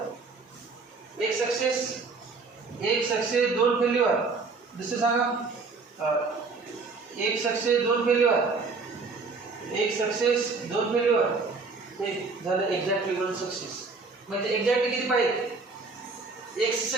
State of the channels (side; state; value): left; quieter; 4.2 dB